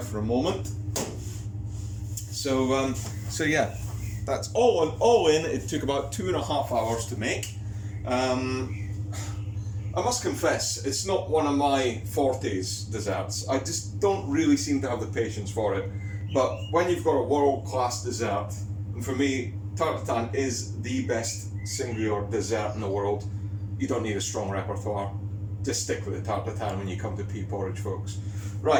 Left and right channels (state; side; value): identical; both; correlation 1.00